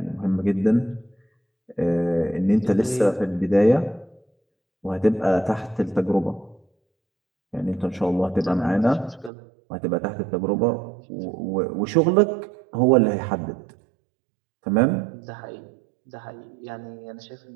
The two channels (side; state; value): left; drops out; at 9.3 s